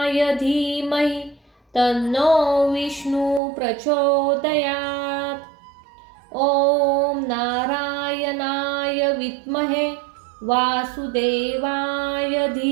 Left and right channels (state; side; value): drops out; left; at 3.4 s